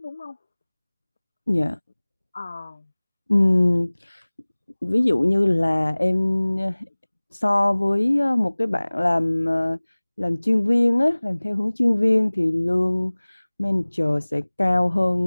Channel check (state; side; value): inverted; both; correlation -1.00